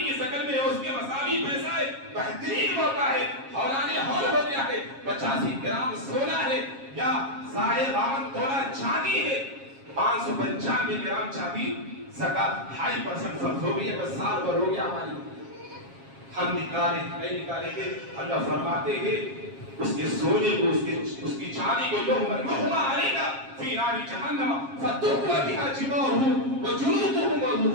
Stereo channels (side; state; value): left; late; 7.4 ms